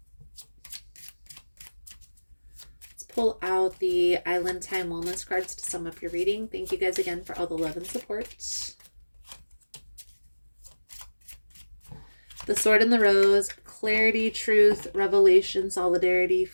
Let's pull out the Island Time Wellness cards to sum up your reading. Thank you guys again for all the love and support. The Sword and the Rose, clarity, truth, revelation, solidarity,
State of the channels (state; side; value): inverted; both; correlation -1.00